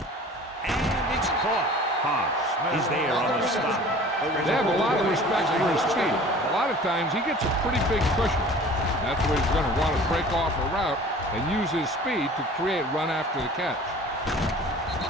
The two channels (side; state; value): both; normal; correlation 0.45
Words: And it's caught. Haas is there on the stop. They have a lot of respect for his speed. A lot of times he gets a pretty big cushion. That's where he's going to want to break off a route and use his speed to create run after the catch.